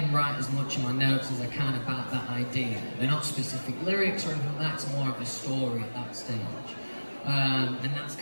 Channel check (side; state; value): both; inverted; correlation -1.00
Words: write as much in my notes as I can about that idea. They're not specific lyrics or anything like that, it's more of a story at that stage. And that's